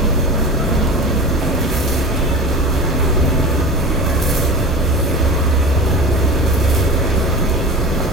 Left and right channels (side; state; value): left; noise; hum, 15 dB below the sound